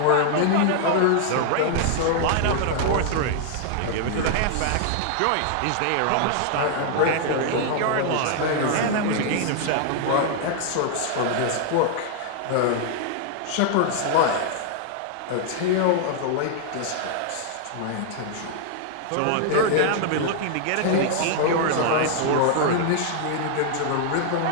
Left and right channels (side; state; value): both; different; correlation 0.00